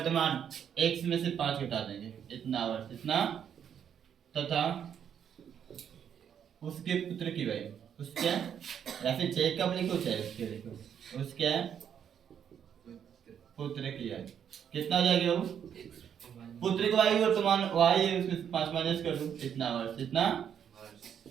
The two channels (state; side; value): quieter; left; 8.5 dB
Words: x में से 5 घटा देंगे, इतना वर्ष, इतना तथा उसके पुत्र की वही, उसके या फिर जैकब लिखो चाहे उसके लिखो, उसके पुत्र की आयु कितना हो जाएगी बाबू? पुत्र की आयु वर्तमान y है, उसमें 5 माइनस कर दो, इतना वर्ष, इतना।